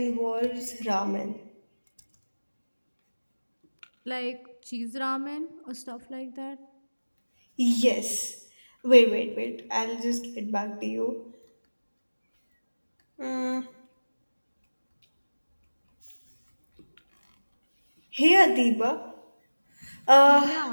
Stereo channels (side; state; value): both; inverted; correlation -1.00